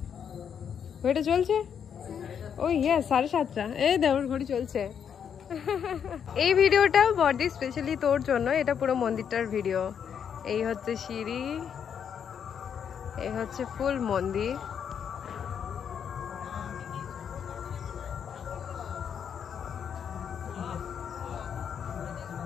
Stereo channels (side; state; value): right; quieter; 7.9 dB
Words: ঘড়িটা চলছে? ওই ইয়ে 7:30। এই দেওয়ার ঘড়ি চলছে। এই ভিডিওটা বডি স্পেশালি তোর জন্য, এটা পুরো মন্দিরটার ভিডিও। এই হচ্ছে সিঁড়ি, এই হচ্ছে ফুল মন্দির।